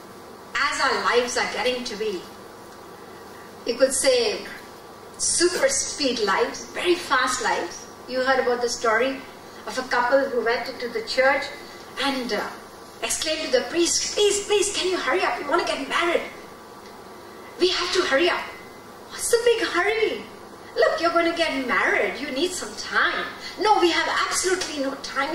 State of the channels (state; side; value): identical; both; correlation 1.00